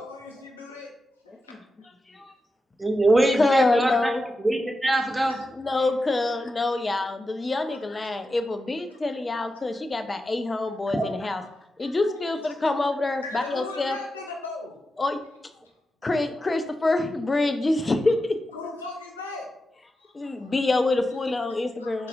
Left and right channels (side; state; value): both; normal; correlation 0.90